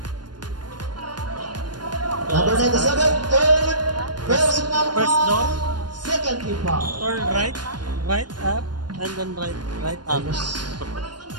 Number 97, third personal First foul, down. second team foul. Turn right up, and then right up. Number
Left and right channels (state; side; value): late; left; 0.71 ms